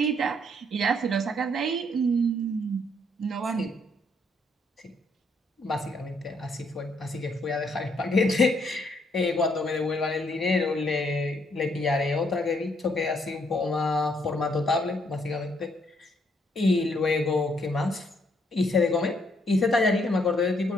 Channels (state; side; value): normal; both; correlation 0.71